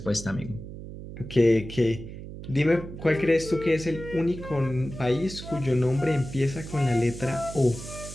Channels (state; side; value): noise; right; hum, 11 dB below the sound